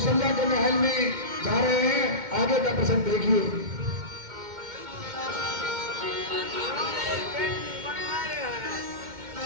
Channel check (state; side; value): late; left; 2.1 ms